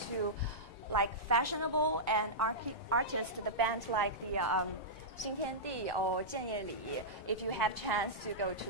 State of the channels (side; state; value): both; normal; correlation -0.12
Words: to like fashionable and artist, the band like the Xintiandi or Jianyeli. If you have chance to go to